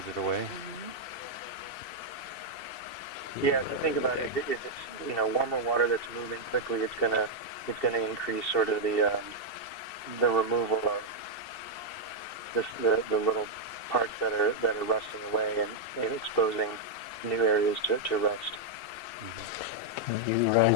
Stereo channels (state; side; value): late; right; 2.7 ms